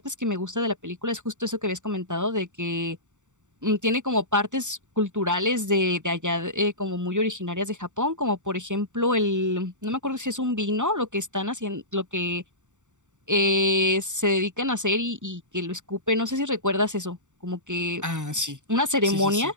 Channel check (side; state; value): left; late; 0.85 ms